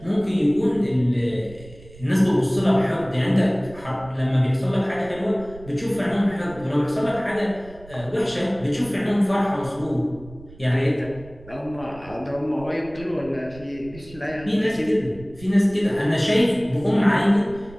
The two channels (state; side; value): noise; right; rumble, 20 dB below the sound